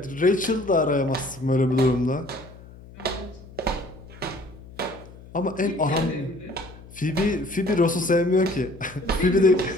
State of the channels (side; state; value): left; noise; hum, 19 dB below the sound